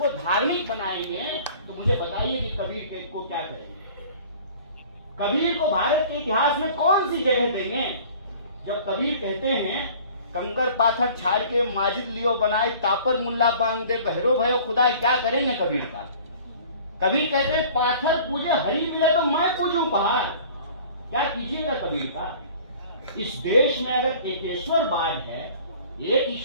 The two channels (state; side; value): inverted; both; correlation -0.47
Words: धार्मिक बनाएंगे तो मुझे बताइए कि कबीर को क्या करेंगे? कबीर को भारत के इतिहास में कौन सी जगह देंगे? जब कबीर कहते हैं कंकर पाथर छाड़ के माजिद लियो बनाए, तापर मुल्ला बांग दे, बहरो भयो खुदा, क्या करेंगे कबीर का? कबीर कहते हैं पाथर पूजे हरी मिले तो मैं पूजूं पहाड़, क्या कीजिएगा कबीर का? इस देश में अगर एकेश्वरवाद है, एक